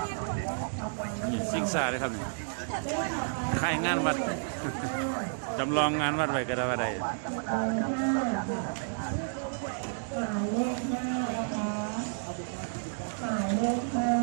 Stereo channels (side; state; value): left; silent; digital silence